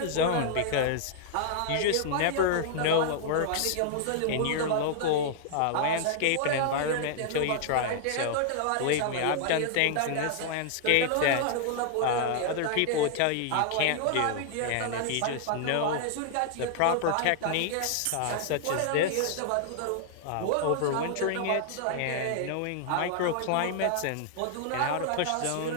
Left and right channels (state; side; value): different; both; correlation -0.01